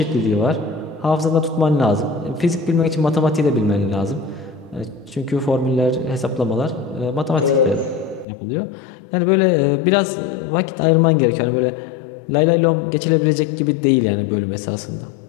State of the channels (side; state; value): right; drops out; at 8.2 s